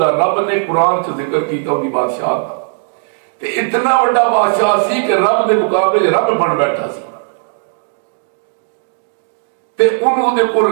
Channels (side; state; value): left; silent; digital silence